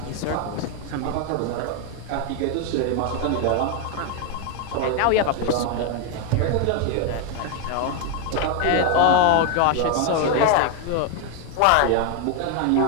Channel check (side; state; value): both; different; correlation 0.01